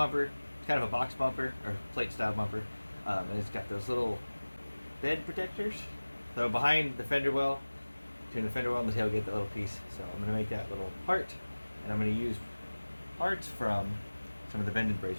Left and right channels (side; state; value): both; inverted; correlation -1.00